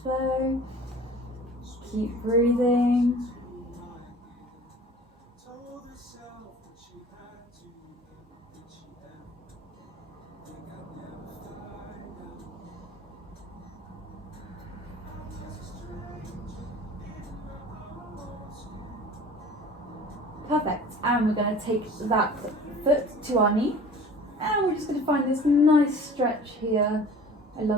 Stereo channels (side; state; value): both; normal; correlation 0.44